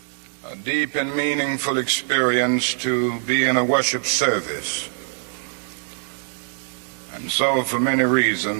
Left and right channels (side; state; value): left; silent; digital silence